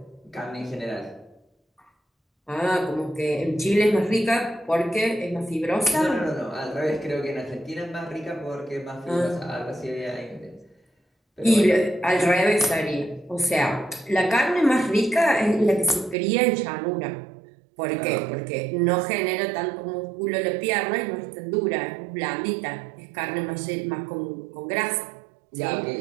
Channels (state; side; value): drops out; left; at 16.2 s